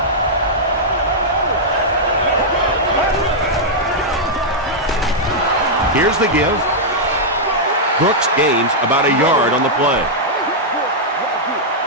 Here's the give. Brooks gains about a yard on the play.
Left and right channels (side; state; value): both; normal; correlation -0.07